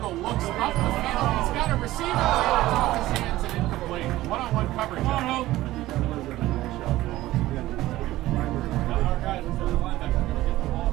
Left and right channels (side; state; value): left; quieter; 16.3 dB